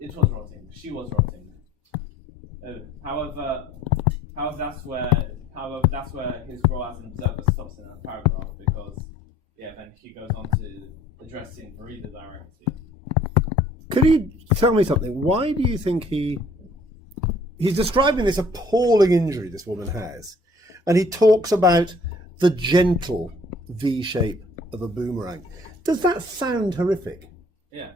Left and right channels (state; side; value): normal; both; correlation 0.56